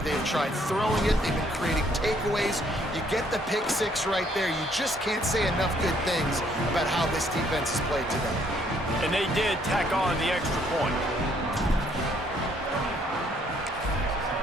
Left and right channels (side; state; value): both; normal; correlation 0.66